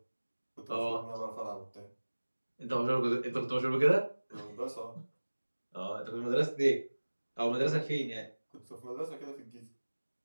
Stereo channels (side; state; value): both; inverted; correlation -1.00